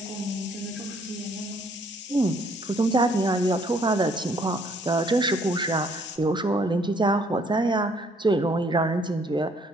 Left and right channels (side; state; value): both; normal; correlation 0.64